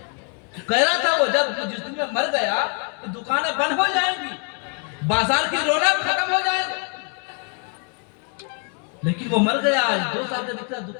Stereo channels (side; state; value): right; quieter; 36.8 dB